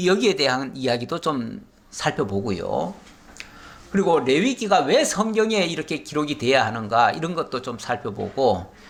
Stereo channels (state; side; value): identical; both; correlation 1.00